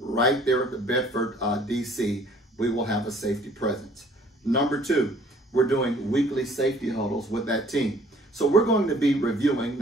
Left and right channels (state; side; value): normal; both; correlation 0.57